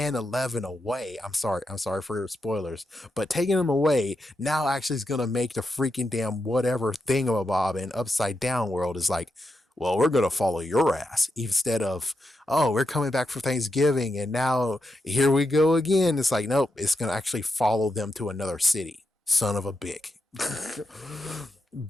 11 away. I'm sorry for your spoilers, but taking him away now actually is gonna make the freaking damn whatever thingamabob and upside down world is like, well, we're gonna follow your ass instead of, oh, we're coming back for Thanksgiving and now here we go again. It's like, nope, it's gonna actually follow them to another city. Son of a bick.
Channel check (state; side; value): normal; both; correlation 0.86